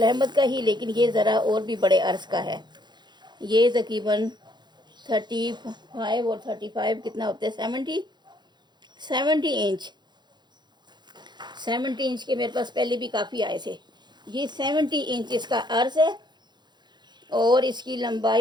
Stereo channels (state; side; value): late; left; 0.21 ms